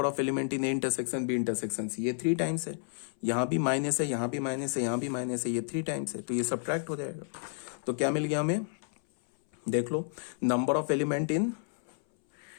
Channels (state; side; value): silent; right; 57 dB below the other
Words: of element in A intersection B intersection C, ये 3 टाइम्स है। यहां भी माइनस है, यहां भी माइनस है, यहां भी माइनस है, ये 3 टाइम्स है। तो ये सब्ट्रैक्ट हो जाएगा। तो क्या मिल गया हमें? देख लो, number of element in